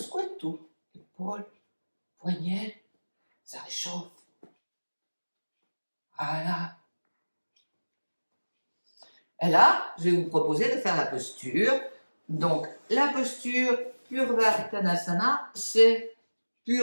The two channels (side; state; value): both; inverted; correlation -1.00